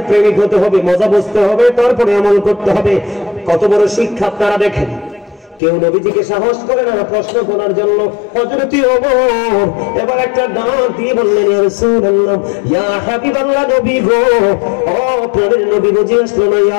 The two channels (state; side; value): drops out; right; at 5.6 s